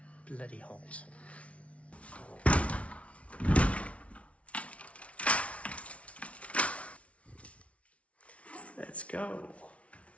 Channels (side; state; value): right; late; 0.063 ms